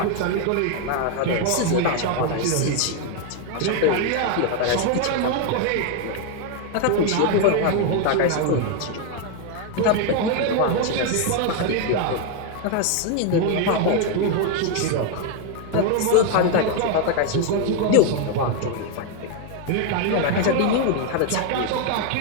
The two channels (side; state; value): both; different; correlation 0.01